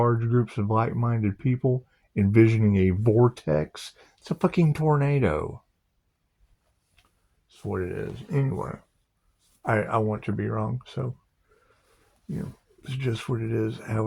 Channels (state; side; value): identical; both; correlation 1.00